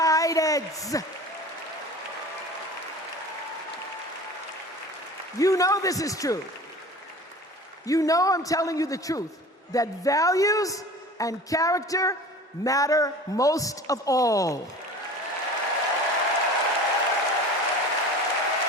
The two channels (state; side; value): normal; both; correlation 0.39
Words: You know this is true. You know I'm telling you the truth, that values and character matter most of all.